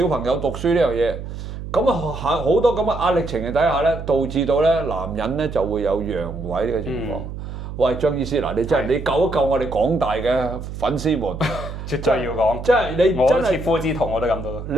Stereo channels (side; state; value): right; noise; hum, 9 dB below the sound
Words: 朋友讀書呢樣嘢，咁啊好多咁嘅壓力情形底下咧，導致到咧男人咧就會有陽痿呢個情況。喂，張醫師嗱，你真係你救一救我哋廣大嘅粉絲們，絕對要講，即係你真係切膚之痛我都感到。